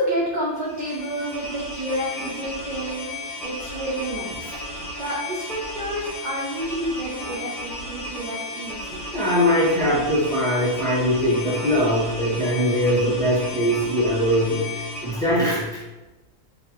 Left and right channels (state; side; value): normal; both; correlation -0.03